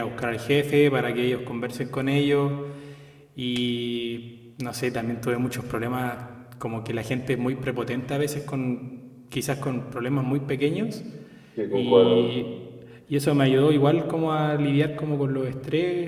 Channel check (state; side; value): identical; both; correlation 1.00